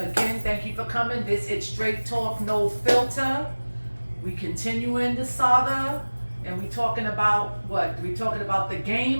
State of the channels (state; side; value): inverted; both; correlation -1.00